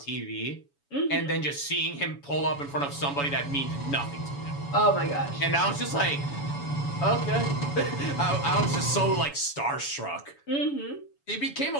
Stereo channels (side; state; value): right; late; 7.1 ms